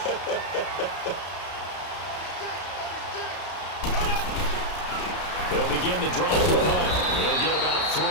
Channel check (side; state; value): right; late; 33 ms